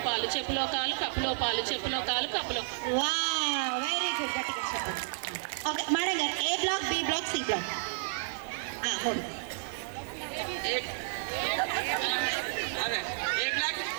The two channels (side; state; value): left; silent; digital silence